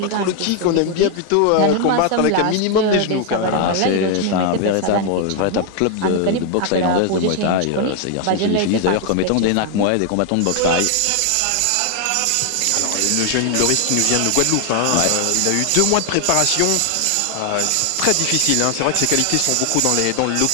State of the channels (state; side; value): different; both; correlation 0.00